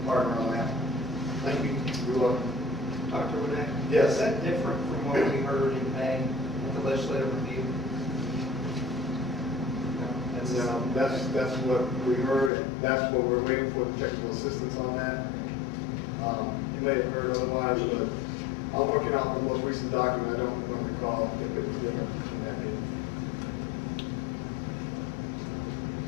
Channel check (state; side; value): drops out; right; at 12.5 s